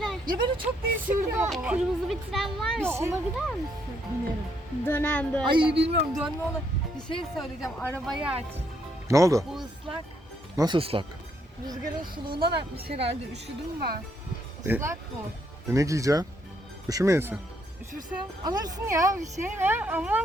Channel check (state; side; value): normal; both; correlation 0.73